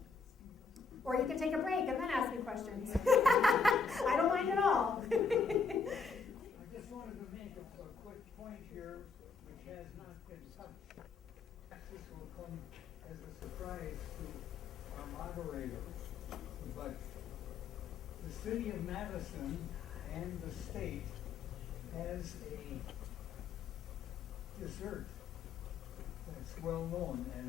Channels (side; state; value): right; quieter; 5.0 dB